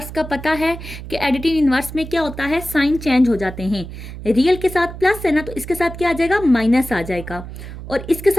का पता है कि एडिटिव इन्वर्स में क्या होता है, साइन चेंज हो जाते हैं। रियल के साथ प्लस है ना, तो इसके साथ क्या आ जाएगा? माइनस आ जाएगा। और इसके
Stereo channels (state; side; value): noise; right; hum, 11 dB below the sound